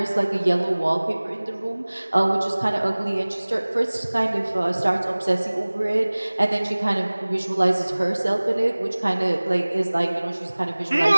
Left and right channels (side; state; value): both; inverted; correlation -1.00